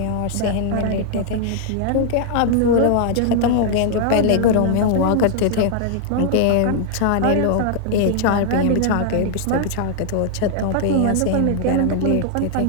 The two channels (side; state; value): both; different; correlation -0.01